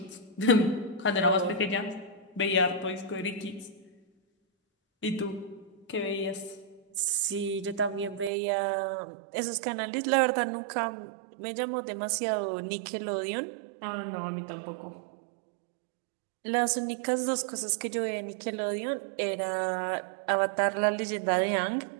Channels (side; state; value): left; drops out; at 8.3 s